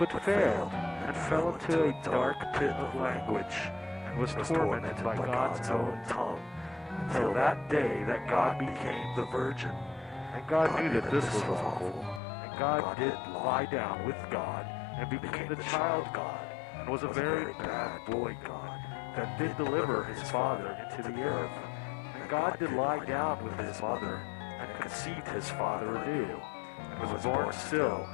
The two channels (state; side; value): drops out; right; at 12.2 s